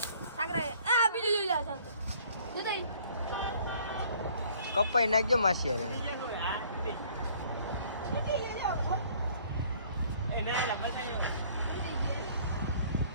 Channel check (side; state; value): both; inverted; correlation -0.57